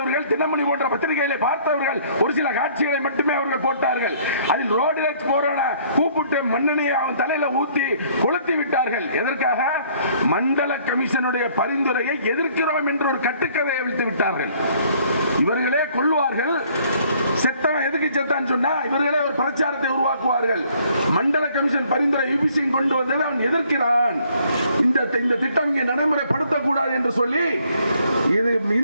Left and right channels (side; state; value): both; inverted; correlation -0.61